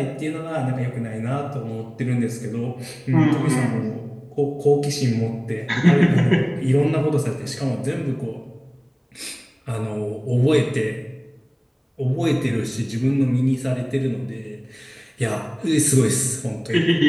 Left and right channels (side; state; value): both; identical; correlation 1.00